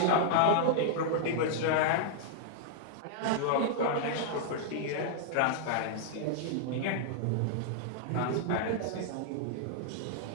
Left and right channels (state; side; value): different; both; correlation -0.01